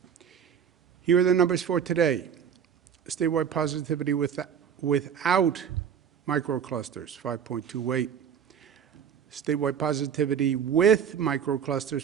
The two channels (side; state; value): left; quieter; 7.9 dB